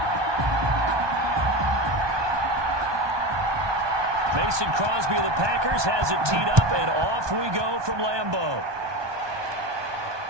Mason Crosby of the Packers has it teed up, and off we go from Lambeau.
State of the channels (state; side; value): late; left; 1.2 ms